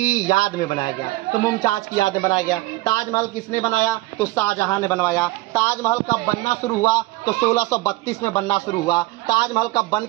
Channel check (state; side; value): quieter; left; 19.4 dB